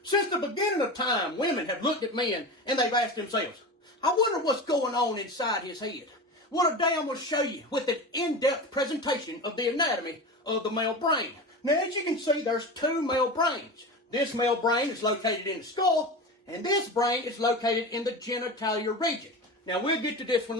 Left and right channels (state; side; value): normal; both; correlation 0.28